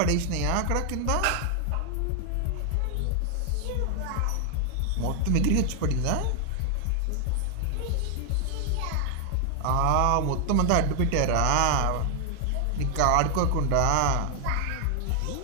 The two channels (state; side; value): different; both; correlation 0.00